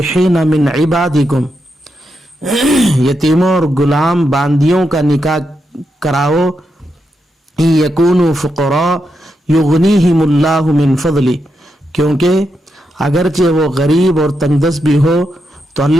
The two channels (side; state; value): both; normal; correlation 0.84